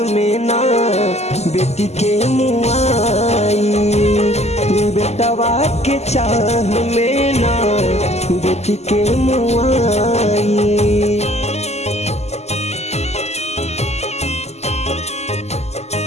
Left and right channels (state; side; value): late; right; 0.32 ms